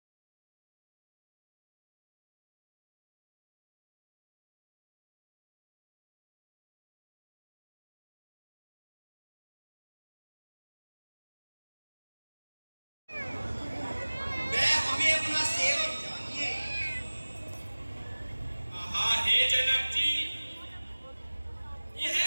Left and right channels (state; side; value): inverted; both; correlation -1.00